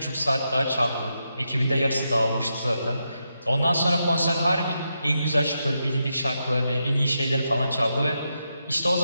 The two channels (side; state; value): both; inverted; correlation -0.85